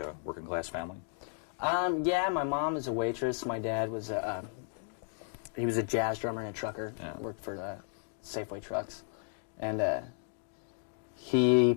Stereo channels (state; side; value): silent; right; 55 dB below the other